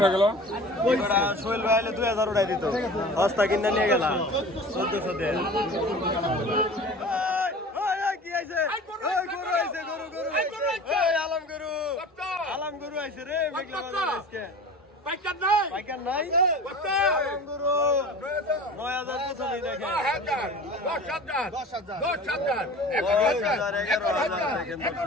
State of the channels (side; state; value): both; normal; correlation 0.39